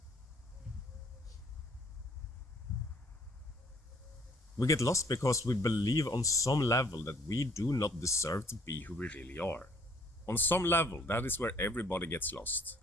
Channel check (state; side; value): normal; both; correlation 0.60